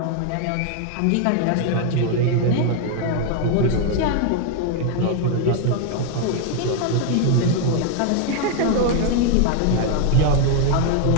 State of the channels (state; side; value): different; both; correlation 0.00